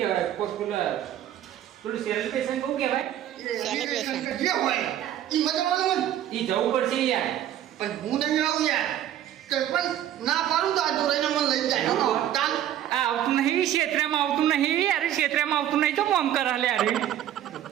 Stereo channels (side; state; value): left; quieter; 11.5 dB